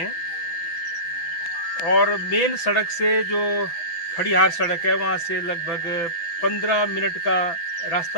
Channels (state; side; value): late; right; 6.0 ms